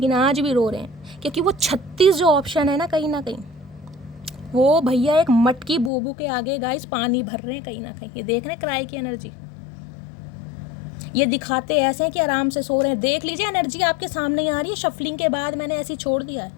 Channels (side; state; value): right; drops out; at 5.9 s